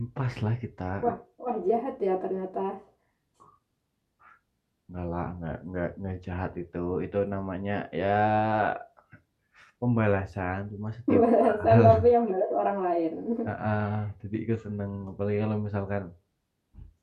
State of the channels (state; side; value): identical; both; correlation 1.00